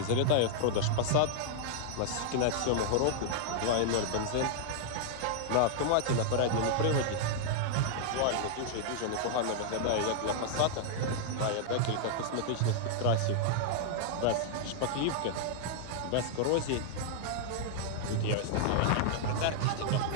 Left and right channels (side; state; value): both; different; correlation -0.01